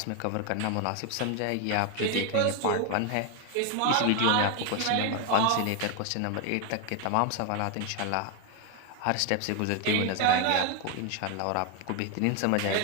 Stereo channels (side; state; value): both; different; correlation 0.01